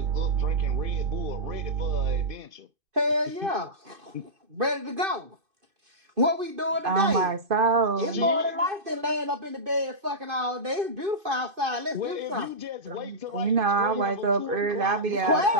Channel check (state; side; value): late; left; 2.5 ms